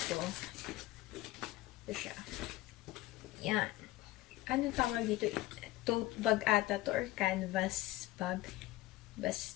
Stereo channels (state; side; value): quieter; right; 17.4 dB